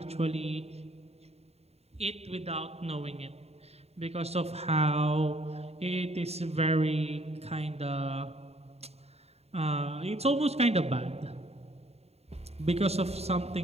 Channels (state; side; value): late; left; 0.30 ms